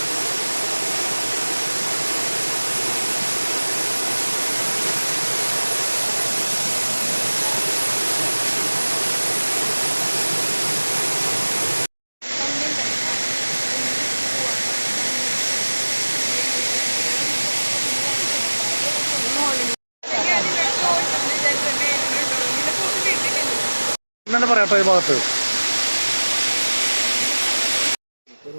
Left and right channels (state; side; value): inverted; both; correlation -1.00